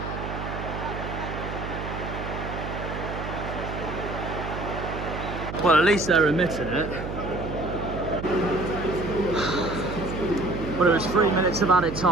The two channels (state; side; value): noise; right; hum, 7 dB below the sound